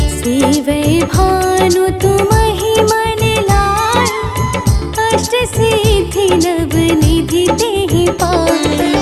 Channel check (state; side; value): identical; both; correlation 1.00